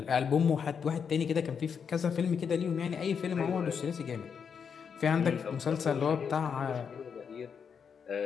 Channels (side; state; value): right; quieter; 6.7 dB